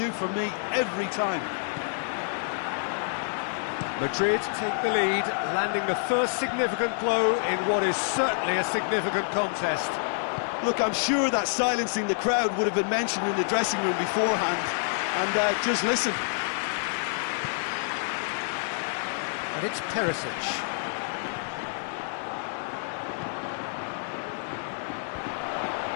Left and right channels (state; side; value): silent; right; digital silence